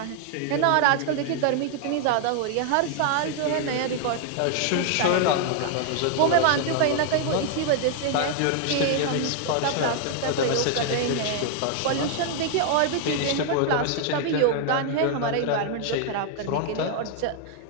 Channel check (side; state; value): both; different; correlation 0.00